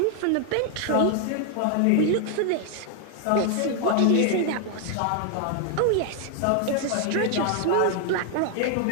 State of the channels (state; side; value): different; both; correlation 0.00